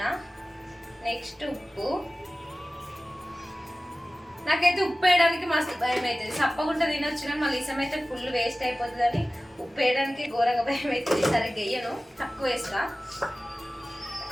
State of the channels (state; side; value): normal; both; correlation 0.97